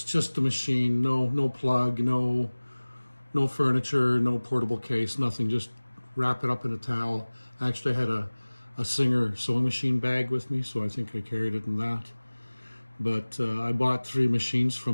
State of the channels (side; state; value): both; inverted; correlation -1.00